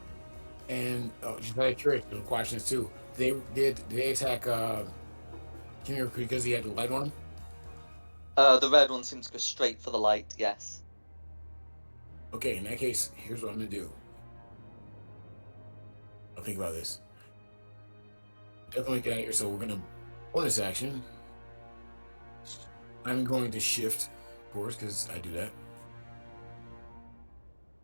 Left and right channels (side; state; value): both; inverted; correlation -1.00